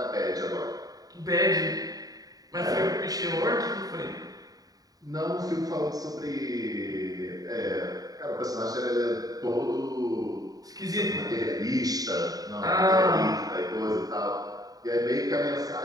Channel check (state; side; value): late; left; 0.18 ms